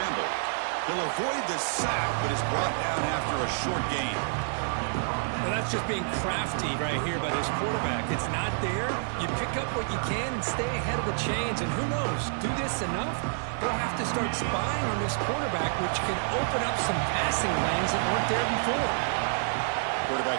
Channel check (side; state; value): left; silent; 59 dB below the other